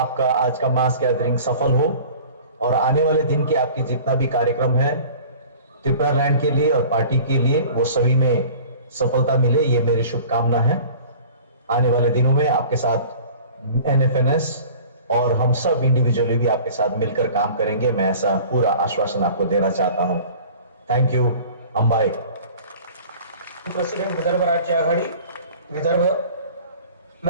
आज का मास गैदरिंग सफल हो और आने वाले दिन के आपके जितना भी कार्यक्रम है त्रिपुरा लैंड के लिए और पार्टी के लिए वो सभी में सफलता मिले, ये मेरी शुभकामना है। आने वाले दिनों में आपके साथ एनएफएनएस और हम सब इंडिविजुअली भी आपके साथ मिलकर काम करेंगे। मैं ऐसा पूरा आश्वासन आपको देना चाहता हूं। Thank you. Ambai president Vidarbha राज्य आघाड़ी विदर्भ।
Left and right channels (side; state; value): both; inverted; correlation -0.44